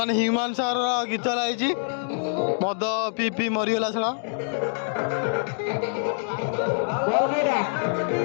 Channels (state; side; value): silent; right; digital silence